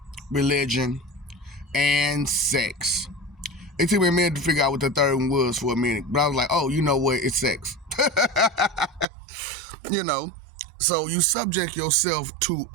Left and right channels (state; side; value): drops out; left; at 9.1 s